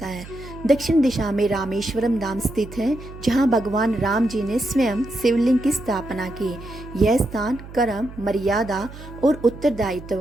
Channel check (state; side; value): noise; right; hum, 15 dB below the sound